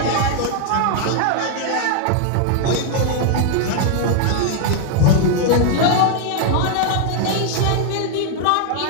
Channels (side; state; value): both; different; correlation 0.00